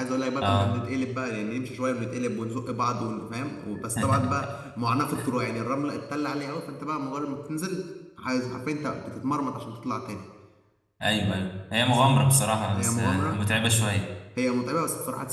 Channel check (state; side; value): identical; both; correlation 1.00